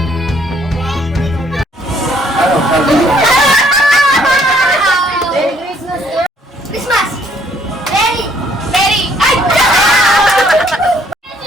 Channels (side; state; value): both; normal; correlation 0.65